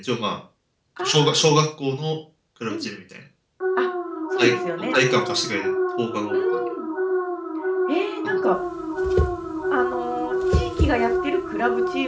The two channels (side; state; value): both; identical; correlation 1.00